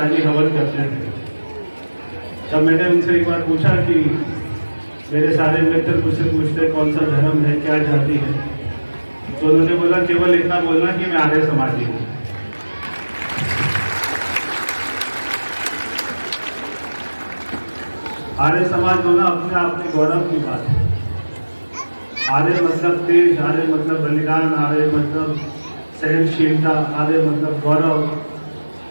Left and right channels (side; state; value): both; inverted; correlation -1.00